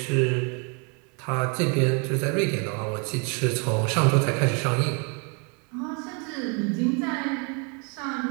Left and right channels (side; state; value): left; quieter; 35.0 dB